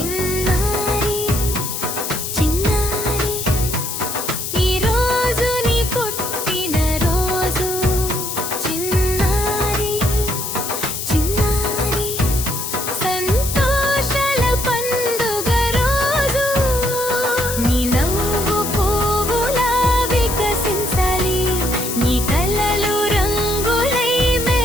చిన్నారి ఈ రోజు నీ పుట్టిన రోజు చిన్నారి చిన్నారి సంతోషాల పండుగ రోజు నీ నవ్వు పువ్వులా వికసించాలి నీ కలలు రంగులై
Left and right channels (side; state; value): left; noise; hiss, 5 dB below the sound